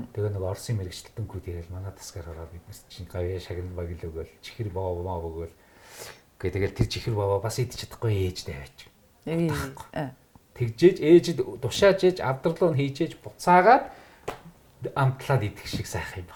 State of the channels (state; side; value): identical; both; correlation 1.00